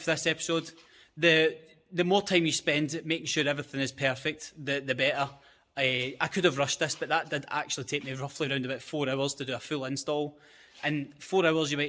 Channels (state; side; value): identical; both; correlation 1.00